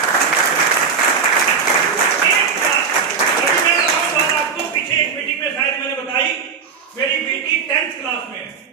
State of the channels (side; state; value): left; quieter; 5.9 dB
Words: आपको पीछे एक मीटिंग में शायद मैंने बताई, मेरी बेटी 10th क्लास में है,